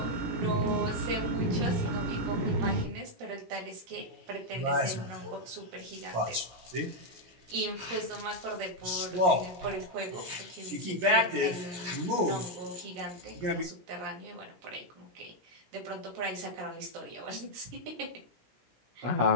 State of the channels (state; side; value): late; left; 17 ms